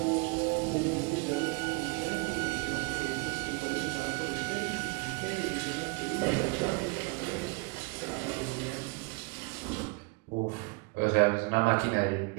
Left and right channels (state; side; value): quieter; left; 29.9 dB